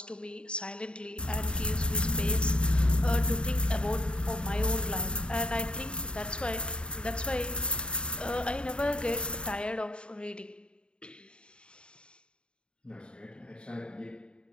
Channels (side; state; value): right; late; 0.052 ms